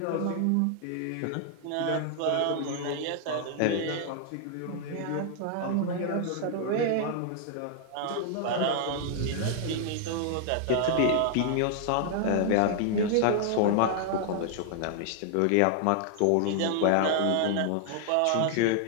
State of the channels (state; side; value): different; both; correlation 0.00